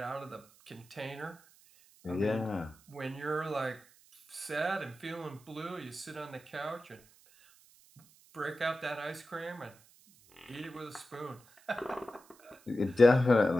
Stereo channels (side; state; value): right; noise; hiss, 27 dB below the sound